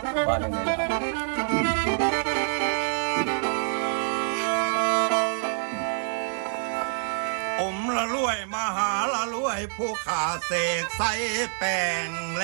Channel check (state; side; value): silent; left; digital silence